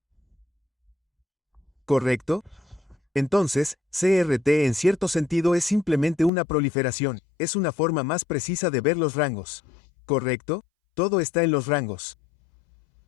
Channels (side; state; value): right; drops out; at 6.3 s